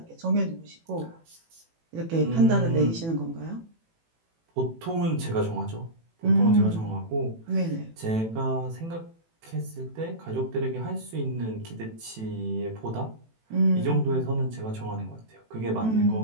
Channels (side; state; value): left; late; 18 ms